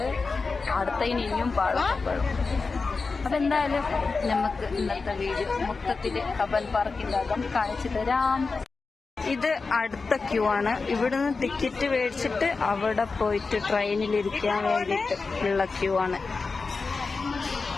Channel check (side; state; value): right; quieter; 4.3 dB